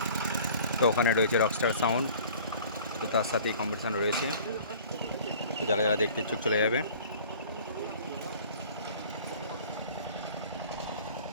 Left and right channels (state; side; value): inverted; both; correlation -0.47